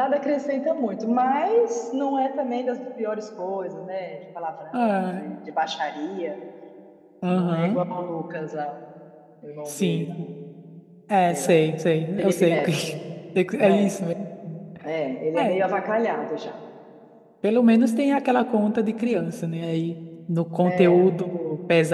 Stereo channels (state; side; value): identical; both; correlation 1.00